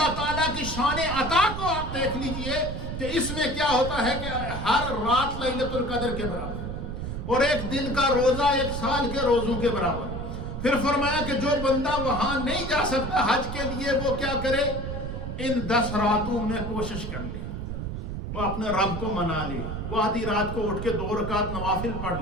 تعالیٰ کی شان عطا کو آپ دیکھ لیجئے کہ اس میں کیا ہوتا ہے کہ ہر رات لیلۃ القدر کے برابر اور ایک دن کا روزہ 1 سال کے روزوں کے برابر۔ پھر فرمایا کہ جو بندہ وہاں نہیں جا سکتا حج کے لیے وہ کیا کرے، ان 10 راتوں میں کوشش کر لے، وہ اپنے رب کو منا لے، وہ آدھی رات کو اٹھ کے 2 رکعت نوافل پڑھ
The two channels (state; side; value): noise; right; rumble, 5 dB below the sound